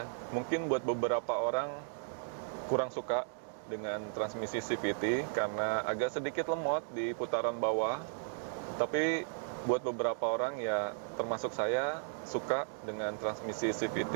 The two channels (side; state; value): left; silent; digital silence